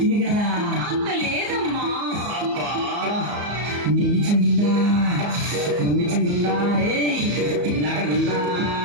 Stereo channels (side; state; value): left; late; 34 ms